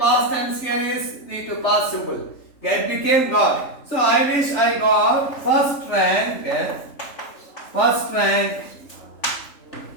tense, here is V2 past simple. Get became got. So I wish I got first rank.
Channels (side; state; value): right; late; 3.4 ms